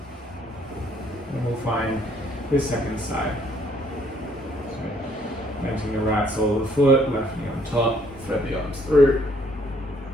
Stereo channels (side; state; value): both; normal; correlation 0.65